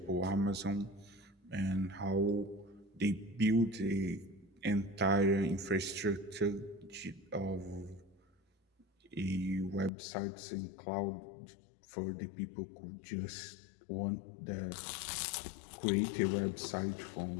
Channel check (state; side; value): drops out; right; at 9.9 s